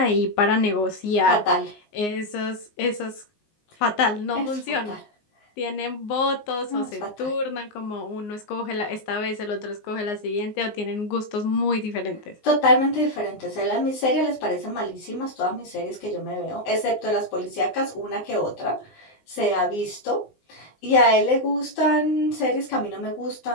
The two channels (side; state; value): right; late; 19 ms